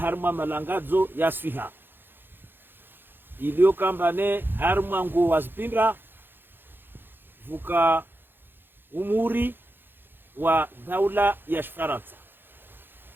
malangazo ya Swiha iliyo kambane harma ngu wazipinda vuka umuri wa daula ya Faransa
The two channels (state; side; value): late; left; 0.10 ms